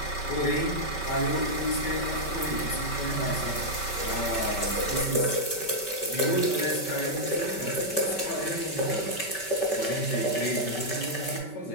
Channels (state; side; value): late; right; 5.2 ms